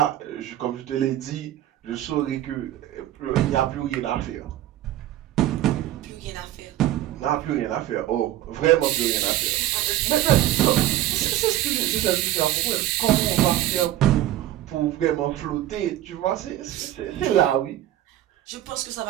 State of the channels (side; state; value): left; quieter; 13.5 dB